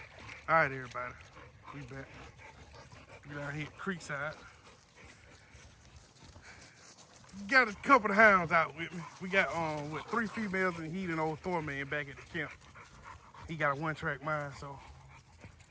All right, everybody, we back. We down here at Creekside. Got a couple of hounds out with me. We got 3 females and he and old Thorman back at the camp. He got a 1-track mind, so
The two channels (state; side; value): identical; both; correlation 1.00